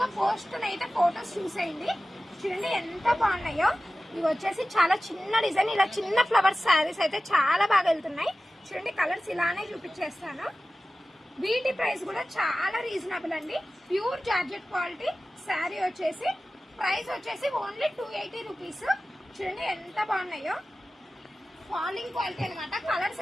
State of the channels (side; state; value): both; normal; correlation 0.96